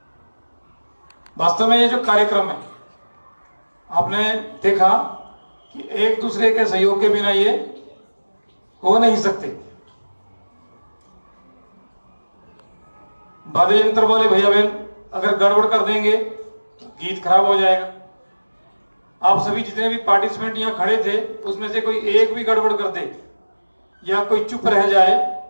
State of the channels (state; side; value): inverted; both; correlation -1.00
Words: वास्तव में ये जो कार्यक्रम है, आपने देखा कि एक दूसरे के सहयोग के बिना ये हो नहीं सकते। वाद्य यंत्र वाले भैया बहन अगर गड़बड़ कर देंगे तो गीत खराब हो जाएगा। आप सभी जितने भी पार्टिसिपेंट यहाँ खड़े थे, उसमें से कोई एक भी गड़बड़ कर दे या कोई चुप रह जाए